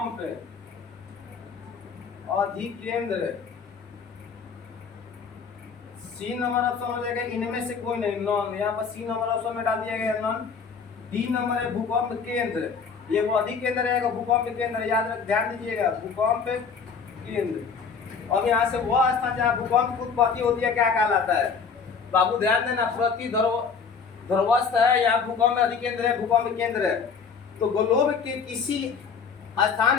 अधिकेंद्र। सी नंबर ऑप्शन हो जाएगा इनमें से कोई नहीं, नॉन। यहाँ पर सी नंबर ऑप्शन में डाल दिया गया नॉन। डी नंबर है भूकंप केंद्र, ये वो अधिकेंद्र रहेगा भूकंप केंद्र, याद रख, ध्यान दीजिएगा, भूकंप केंद्र। अब यहाँ से वह स्थान जहाँ भूकंप की उत्पत्ति होती है क्या कहलाता है। बाबू ध्यान देना, प्रतिध्रुवस्थ है, यहाँ भूकंप अधिकेंद्र है, भूकंप केंद्र है। तो ग्लोब के किसी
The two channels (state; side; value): quieter; right; 5.8 dB